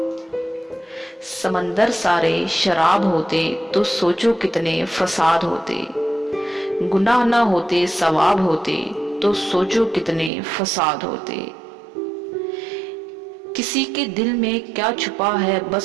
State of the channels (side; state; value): left; drops out; at 10.3 s